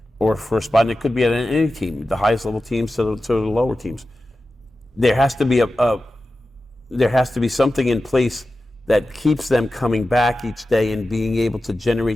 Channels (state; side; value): normal; both; correlation 0.93